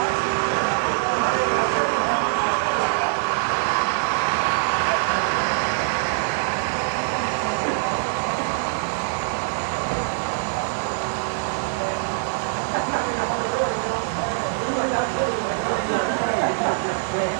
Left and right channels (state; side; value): silent; left; digital silence